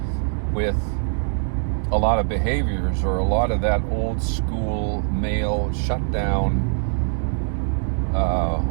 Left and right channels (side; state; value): left; silent; 59 dB below the other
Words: with a lot of behaviors or a lot of that old school male shutdown